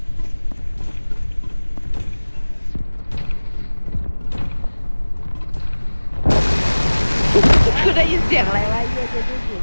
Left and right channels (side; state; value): both; inverted; correlation -1.00